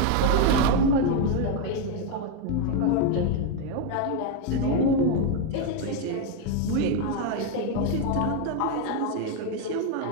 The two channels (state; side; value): different; both; correlation 0.02